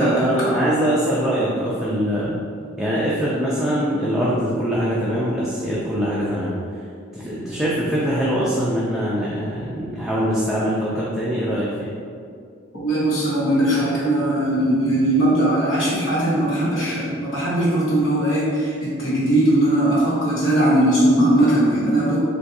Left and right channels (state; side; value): normal; both; correlation 0.57